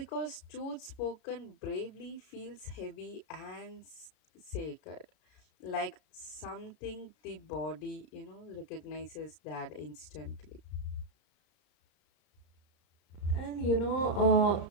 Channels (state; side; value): late; right; 35 ms